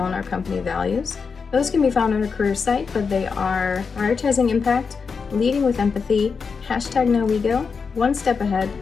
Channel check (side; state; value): right; quieter; 5.4 dB